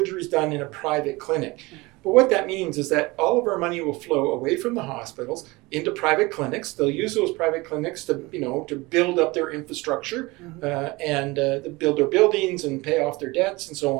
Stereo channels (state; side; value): quieter; left; 22.9 dB